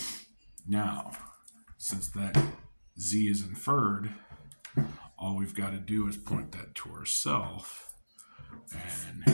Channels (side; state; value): both; inverted; correlation -1.00